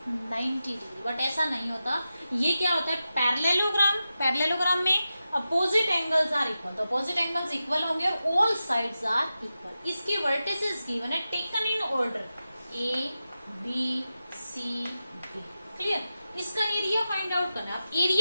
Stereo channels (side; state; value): both; inverted; correlation -0.91